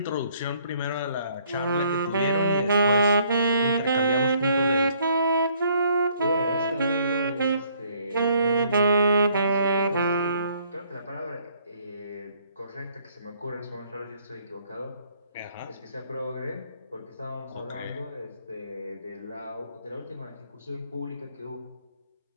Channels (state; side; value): inverted; both; correlation -0.64